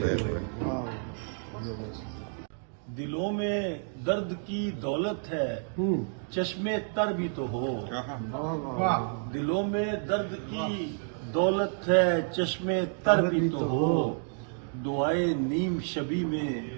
دلوں میں درد کی دولت ہے چشمے تر بھی تو ہو، دلوں میں درد کی دولت ہے چشمے تر بھی تو ہو، دعائے نیم شبی میں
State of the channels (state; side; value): silent; left; 58 dB below the other